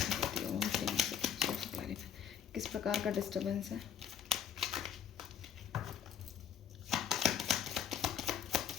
ओम क्लीम क्लैरिफाई, किस प्रकार का डिस्टर्बेंस है।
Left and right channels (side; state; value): right; quieter; 8.5 dB